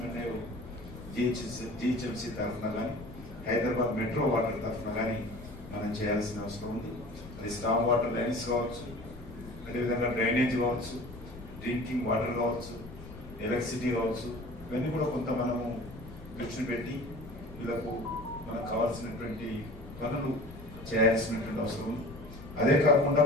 జిహెచ్ఎంసీ తరఫున కానీ, హైదరాబాద్ మెట్రో వాటర్ తరఫున కానీ మనం చేయాల్సిన అవసరం ఉంది. అది స్టామ్ వాటర్ లైన్స్ కావచ్చు, అదేవిధంగా డ్రైనేజ్ కావచ్చు, డ్రింకింగ్ వాటర్ కావచ్చు, ఎలక్ట్రిసిటీ కావచ్చు, ఇవన్నీ కూడా కొంత మనము దృష్టి పెట్టి వీళ్ళకు మనకు కావాల్సినటువంటి పనులు చేయాల్సినటువంటి అవసరం ఉంది. అదే కాకుండా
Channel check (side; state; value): left; noise; rumble, 15 dB below the sound